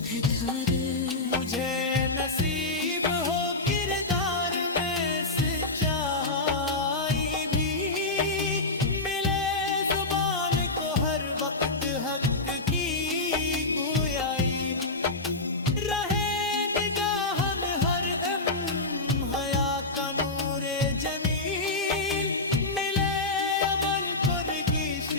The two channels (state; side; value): quieter; right; 3.1 dB